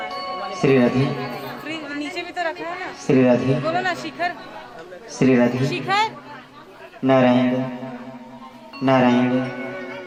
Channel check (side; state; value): both; identical; correlation 1.00